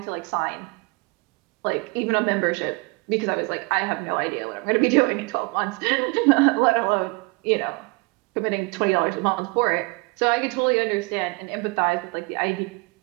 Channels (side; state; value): left; quieter; 28.2 dB